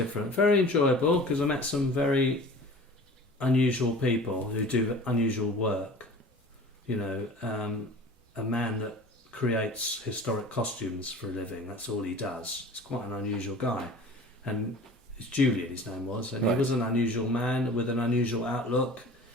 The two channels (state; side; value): normal; both; correlation 0.42